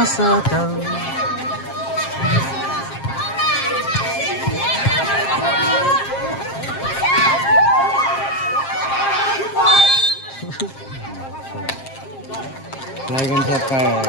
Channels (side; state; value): right; late; 7.5 ms